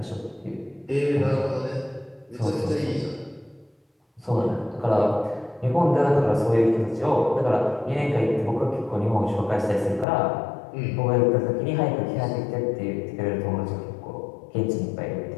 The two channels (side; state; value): right; drops out; at 10.1 s